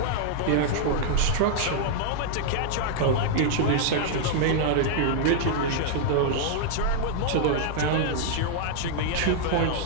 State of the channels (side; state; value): both; different; correlation -0.01